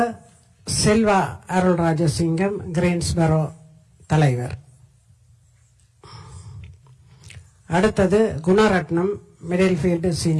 செல்வா அருள்ராஜசிங்கம், கிரீன்ஸ்பரோ தலைவர். அடுத்தது Gunaratnam, Middlefield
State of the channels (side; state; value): both; identical; correlation 1.00